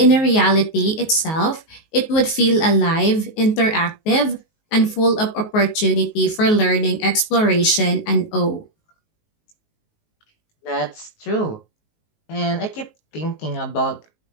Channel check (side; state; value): right; late; 19 ms